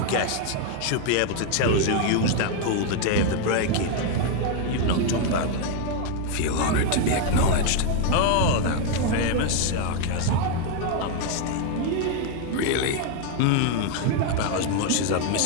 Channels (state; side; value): different; both; correlation 0.01